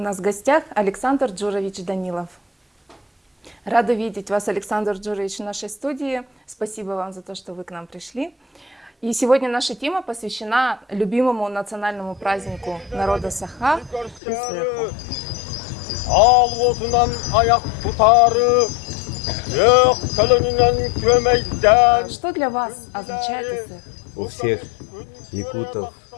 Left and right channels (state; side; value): drops out; right; at 14.2 s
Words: в гостях Александр Джурович Данилов. Рада видеть вас, Александр Джурович, в нашей студии. Спасибо вам за то, что вы к нам пришли. И сегодня наша тема посвящена любимому национальному празднику народа Саха – Исэху. Что для вас означает Исэх? У всех якутов,